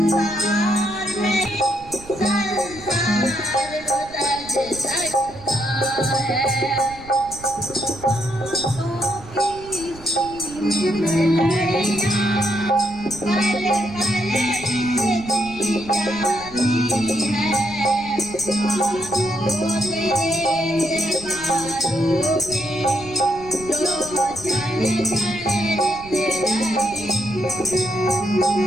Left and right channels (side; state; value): right; noise; rumble, 19 dB below the sound